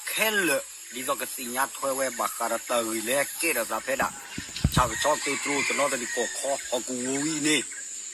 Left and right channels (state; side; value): identical; both; correlation 1.00